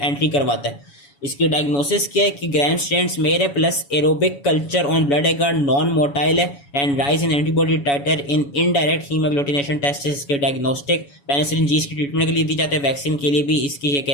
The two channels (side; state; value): right; late; 7.1 ms